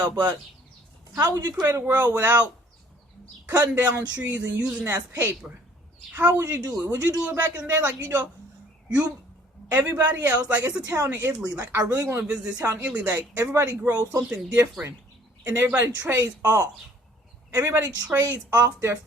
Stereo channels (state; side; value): normal; both; correlation 0.57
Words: But how would you create a world without cutting down trees and using that as paper? How would you do it? Would you do it back in the day? Like, you know, Everybody else, like it's a town in Italy. Like I really want to visit this town in Italy. Like everybody grows something different, and everybody trades off. Everybody trades off their